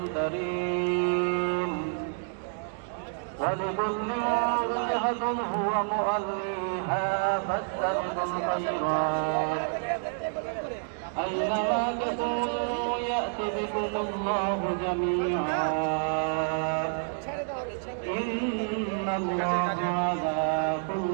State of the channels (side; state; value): left; silent; digital silence